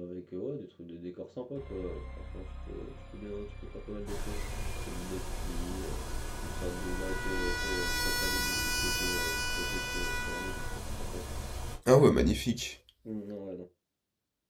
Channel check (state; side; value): identical; both; correlation 1.00